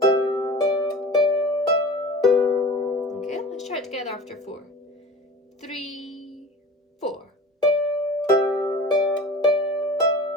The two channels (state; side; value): normal; both; correlation 0.38